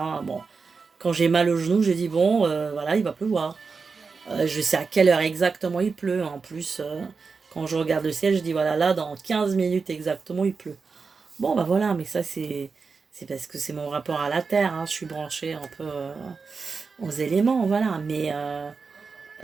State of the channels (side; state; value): left; quieter; 4.8 dB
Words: Bon, quand j'ai mal au genou, je dis bon, voilà, il va pleuvoir. Je sais à quelle heure exactement il pleut. En plus, quand je regarde le ciel, je dis voilà, là, dans 15 minutes exactement, il pleut. Bon, bah voilà, mais ça, c'est parce que c'est mon rapport à la terre, hein. Je suis branchée un peu aux éléments, voilà. Mais